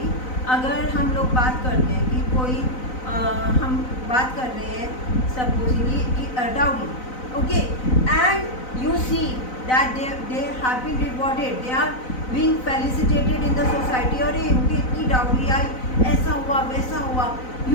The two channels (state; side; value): late; right; 4.0 ms